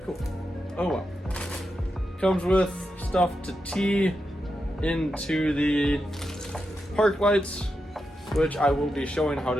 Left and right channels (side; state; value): both; normal; correlation 0.87